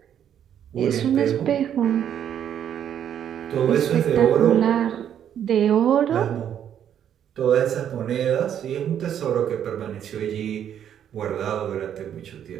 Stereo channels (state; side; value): quieter; left; 9.5 dB